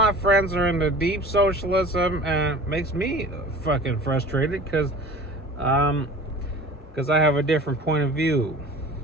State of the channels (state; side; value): normal; both; correlation 0.41